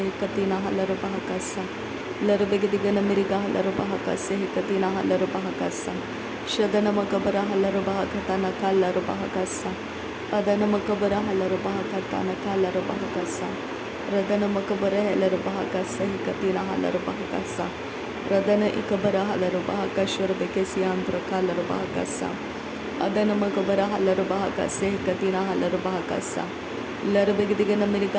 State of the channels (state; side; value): identical; both; correlation 1.00